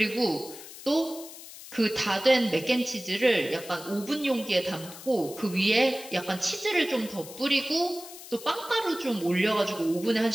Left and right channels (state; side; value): noise; left; hiss, 15 dB below the sound